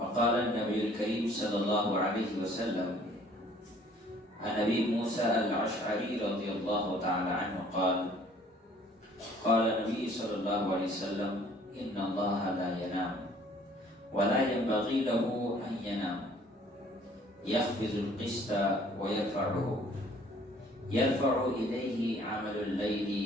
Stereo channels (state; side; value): normal; both; correlation 0.56